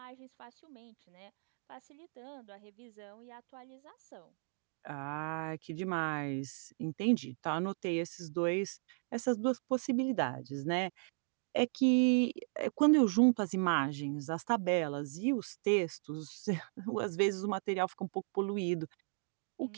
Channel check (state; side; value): silent; left; 54 dB below the other